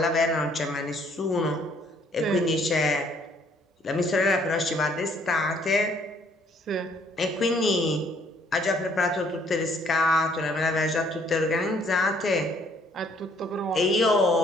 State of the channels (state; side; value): normal; both; correlation 0.64